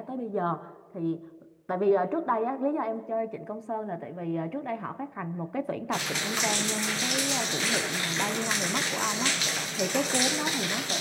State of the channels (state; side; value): identical; both; correlation 1.00